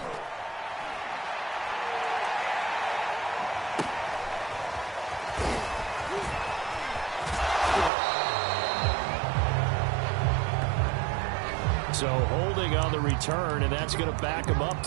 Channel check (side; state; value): left; drops out; at 7.9 s